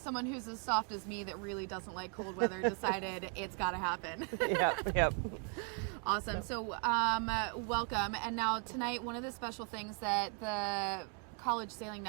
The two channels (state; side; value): quieter; left; 38.0 dB